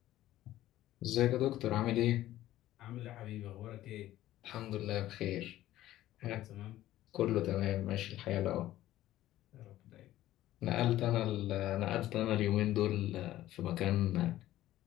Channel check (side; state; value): right; quieter; 14.4 dB